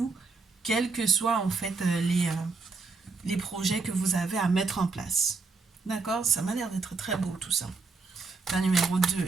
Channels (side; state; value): left; quieter; 4.3 dB